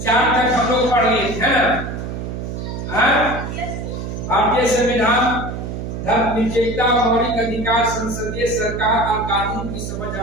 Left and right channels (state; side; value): noise; right; hum, 6 dB below the sound